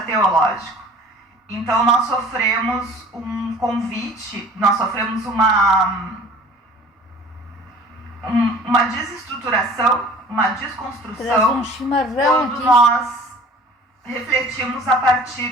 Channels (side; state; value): both; normal; correlation 0.48